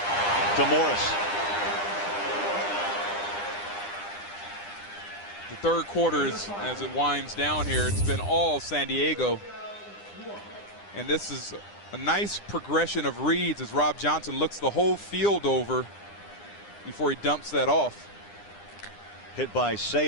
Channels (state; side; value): late; right; 9.9 ms